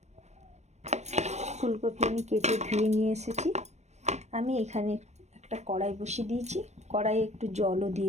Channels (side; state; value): left; late; 0.32 ms